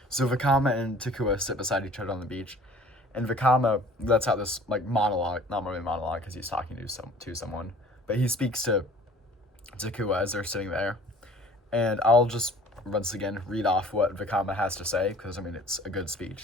So Vakama and Takua sit beside each other on the beach, and Vakama lets out this like monologue, not really monologue because he's talking to someone, but he speaks to Takua as they're sitting there. And I'll just once again read off what Vakama has to say, because I mean it's a good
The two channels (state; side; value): normal; both; correlation 0.50